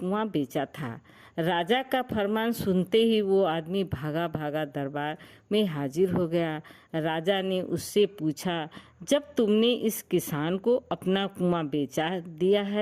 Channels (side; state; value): both; identical; correlation 1.00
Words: बेचा था। राजा का फरमान सुनते ही वो आदमी भागा भागा दरबार में हाजिर हो गया। राजा ने उससे पूछा, जब तुमने इस किसान को अपना कुआं बेचा दिया